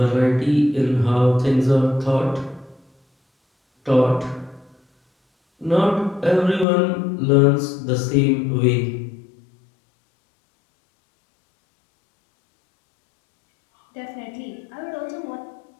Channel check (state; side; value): drops out; right; at 6.7 s